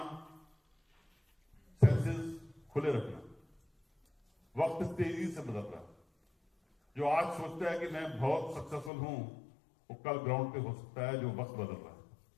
सेंसेस खुले रखना। वक्त तेजी से बदल रहा है। जो आज सोचता है कि मैं बहुत सक्सेसफुल हूं, वो कल ग्राउंड पे हो सकता है, जो वक्त बदल रहा है।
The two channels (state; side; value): drops out; right; at 8.9 s